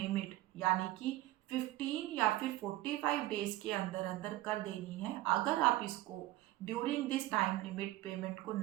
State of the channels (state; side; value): quieter; left; 16.5 dB